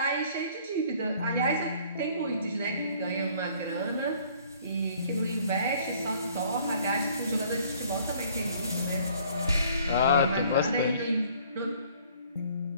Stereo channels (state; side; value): inverted; both; correlation -0.57